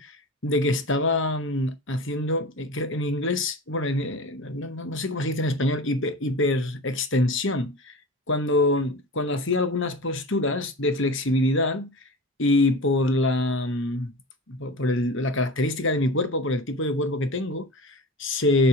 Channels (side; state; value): both; normal; correlation 0.31